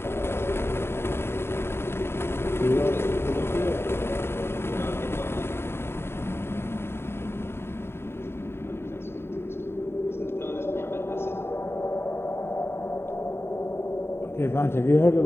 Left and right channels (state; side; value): late; right; 0.11 ms